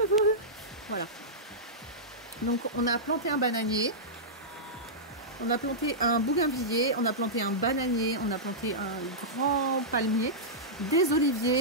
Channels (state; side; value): normal; both; correlation -0.13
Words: voilà. Donc on a planté un bananier. On a planté un bougainvillier, on a planté un bananier, on a planté un grand palmier, des